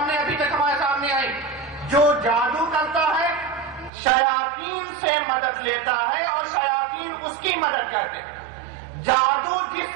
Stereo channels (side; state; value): left; drops out; at 3.9 s